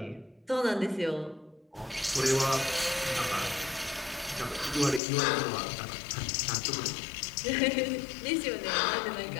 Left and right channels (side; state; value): right; drops out; at 5.0 s